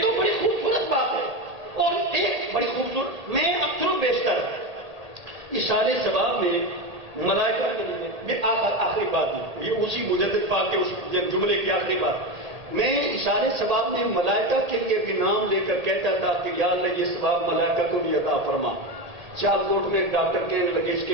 تو بڑی خوبصورت بات ہے. اور ایک بڑی خوبصورت، میں اکثر و بیشتر اشارے ثواب میں ملائکہ یہ آخری بات ہے، یہ اسی مجدد پاک کے اس جملے کی آخری بات. میں اشارے ثواب میں ملائکہ کے لیے بھی نام لے کر کہتا تھا کہ یا اللہ یہ ثواب ملائکہ کو بھی عطا فرما. سیالکوٹ میں ایک ڈاکٹر کہنے لگے اس کے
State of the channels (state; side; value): late; left; 1.8 ms